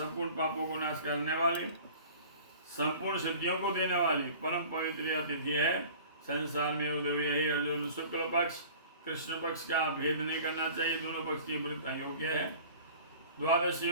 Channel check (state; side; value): inverted; both; correlation -0.44